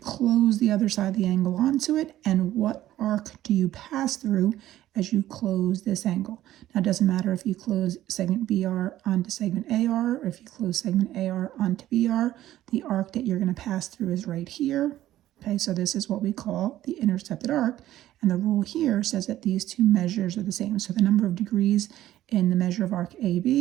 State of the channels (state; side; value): quieter; left; 13.7 dB